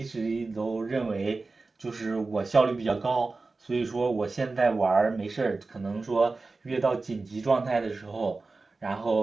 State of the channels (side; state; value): left; quieter; 3.7 dB